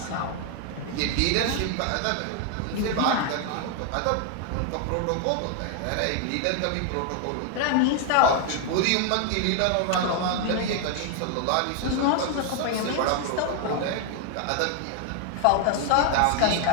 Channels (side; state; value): both; different; correlation 0.00